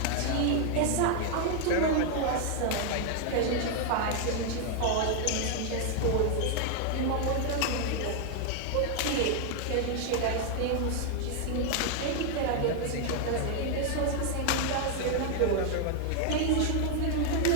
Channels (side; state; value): both; different; correlation 0.00